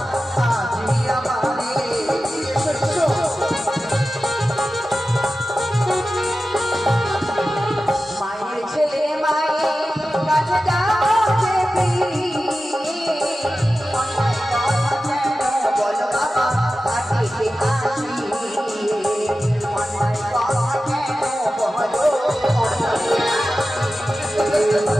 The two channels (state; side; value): normal; both; correlation 0.94